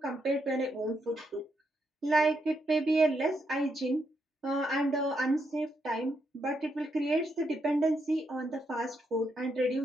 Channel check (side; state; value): both; normal; correlation 0.80